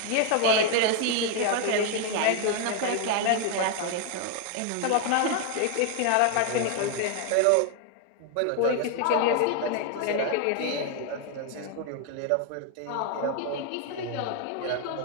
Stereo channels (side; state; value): both; different; correlation 0.00